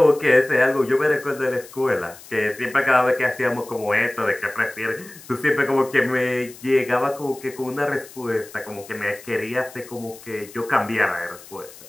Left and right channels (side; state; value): left; noise; hiss, 19 dB below the sound